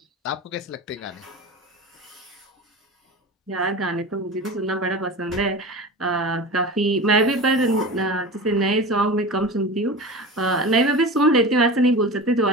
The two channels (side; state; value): both; normal; correlation 0.31